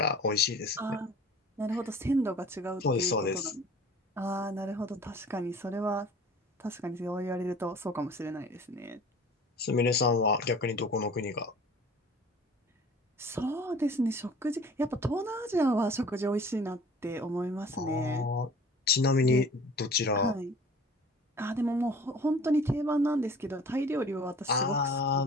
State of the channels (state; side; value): normal; both; correlation 0.47